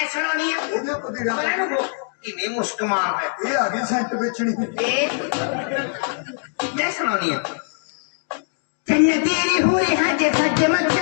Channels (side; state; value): right; silent; 63 dB below the other